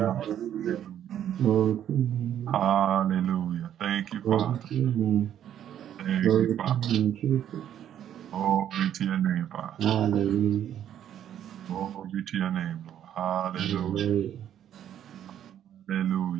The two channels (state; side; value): quieter; left; 10.4 dB